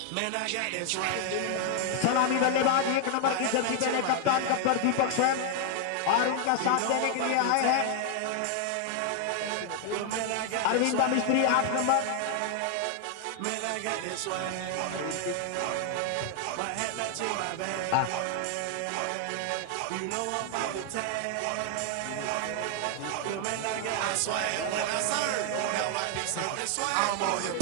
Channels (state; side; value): different; both; correlation 0.00